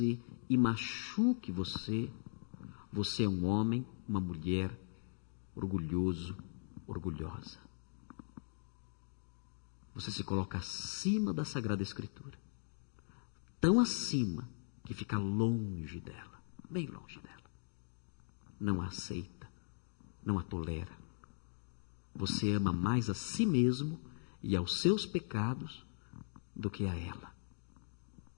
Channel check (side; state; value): right; silent; digital silence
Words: e machuque você, você é um homem, uma mulher orgulhoso, orgulhosa. Você se coloca acima da Sagrada Escritura, tão acima que fica longe dela, bem longe dela. Não a aceita, não a tolera. Você ama mais a si mesmo e aos seus pecados do que a ela.